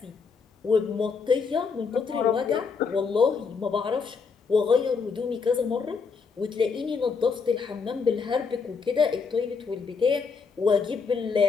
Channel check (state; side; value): quieter; right; 5.3 dB